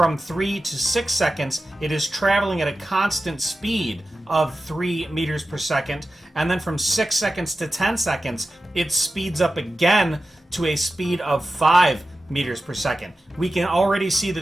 3 to 6 seconds, it is traveling at a constant speed of 3 meters per second. And then from 6 seconds to 10 seconds, it speeds up again to a speed of 5 meters per second. We can already see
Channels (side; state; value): both; normal; correlation 0.93